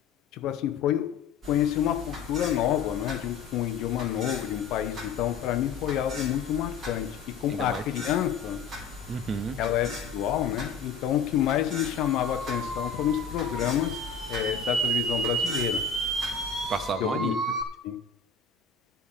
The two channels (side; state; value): right; quieter; 5.8 dB